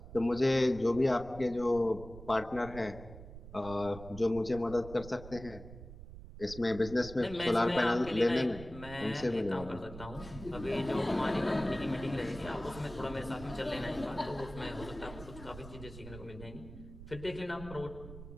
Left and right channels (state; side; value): noise; right; rumble, 14 dB below the sound